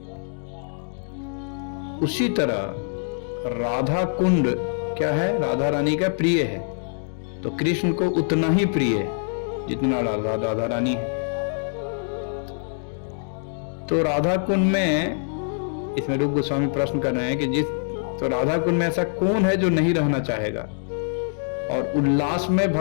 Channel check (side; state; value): right; silent; digital silence